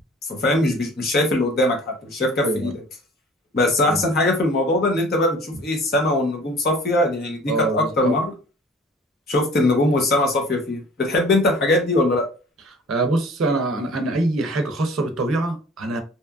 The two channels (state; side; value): normal; both; correlation 0.48